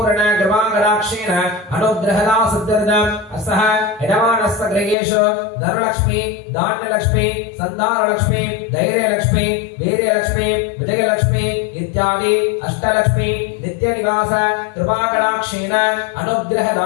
कृपाकटाक्षेण अनुग्रहदा सिद्ध्यर्थम् अस्तः यजमानस्य गृहेषु धनलक्ष्मी धान्यलक्ष्मी सन्तानलक्ष्मी धैर्यलक्ष्मी वीर्यलक्ष्मी विजयलक्ष्मी इत्यादि अष्टलक्ष्मी नित्यनिवास कृपाकटाक्षेण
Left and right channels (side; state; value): right; drops out; at 5.0 s